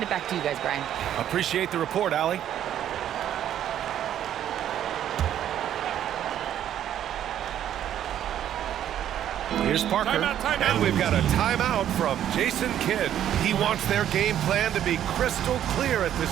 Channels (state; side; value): quieter; left; 10.8 dB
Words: it back to you guys, Brian. Appreciate the report, Allie. Here's Parker, Timeout. And we've got a timeout from Jason Kidd. He wants their game plan to be crystal clear at